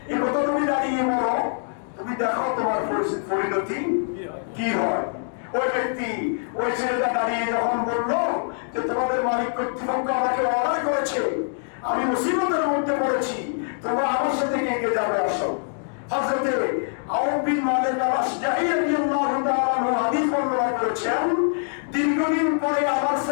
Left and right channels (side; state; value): right; silent; digital silence